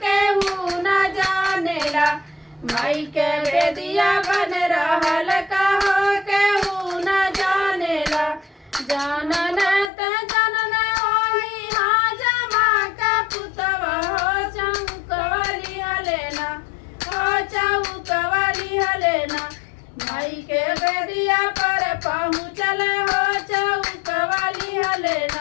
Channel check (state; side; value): drops out; right; at 9.9 s